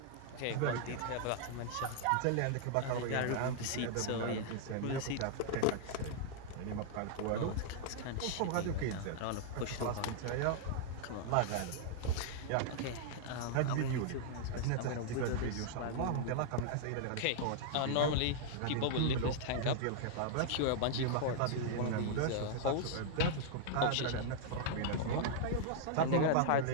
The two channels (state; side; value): different; both; correlation -0.01